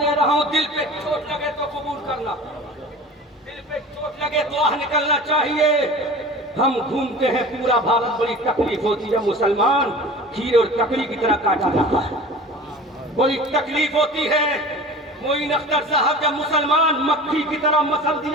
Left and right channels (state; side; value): normal; both; correlation 0.38